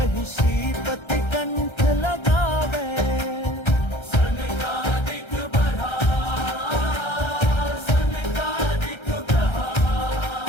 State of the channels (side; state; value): right; late; 1.3 ms